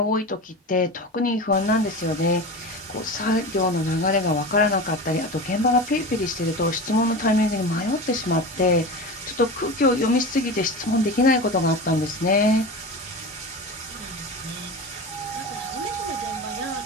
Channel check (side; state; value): both; normal; correlation 0.28